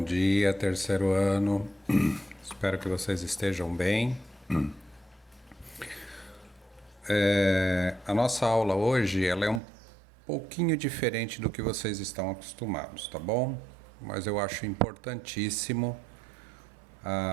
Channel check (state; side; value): drops out; left; at 9.6 s